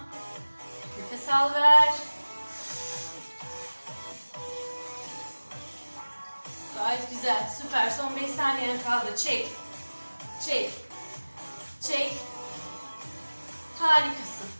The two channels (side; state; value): both; inverted; correlation -1.00